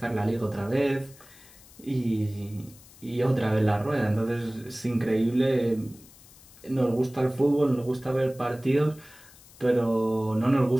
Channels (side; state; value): left; noise; hiss, 23 dB below the sound